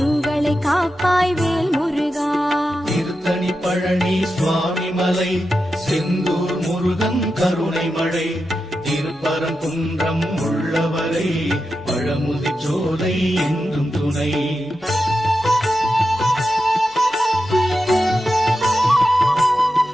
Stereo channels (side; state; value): left; noise; hum, 30 dB below the sound